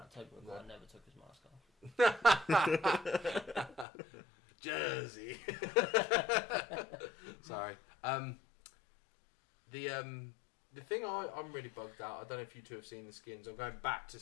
Tobey Maguire never took his mask off. Jersey. Sorry. The thing I'm really bugged out. I don't know if you two have seen the skins. I'm going back to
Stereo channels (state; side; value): drops out; right; at 3.9 s